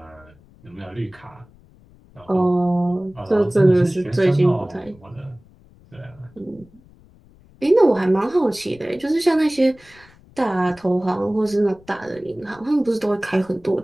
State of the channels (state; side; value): noise; left; rumble, 27 dB below the sound